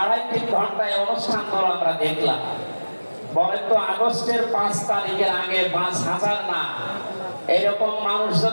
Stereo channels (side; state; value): both; inverted; correlation -1.00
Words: ঘন্টায় অনুষ্ঠানগুলো আমরা দেখলাম। বলেন তো, আগস্টের 5 তারিখের আগে 5000 না, এরকম মানুষ